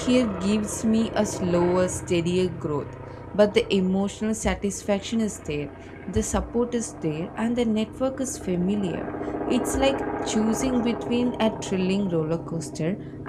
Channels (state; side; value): identical; both; correlation 1.00